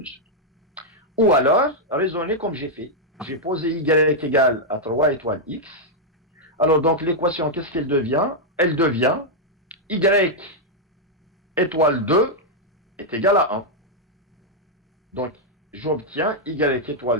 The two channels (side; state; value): both; normal; correlation -0.03